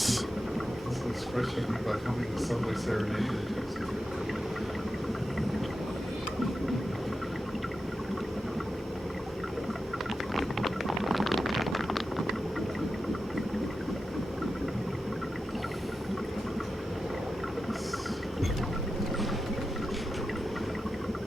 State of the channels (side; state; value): both; normal; correlation 0.91